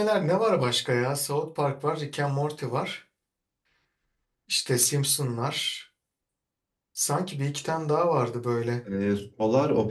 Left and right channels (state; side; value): identical; both; correlation 1.00